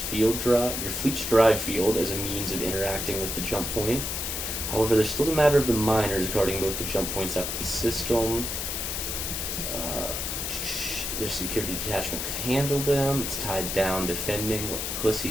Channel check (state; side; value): noise; left; hiss, 3 dB below the sound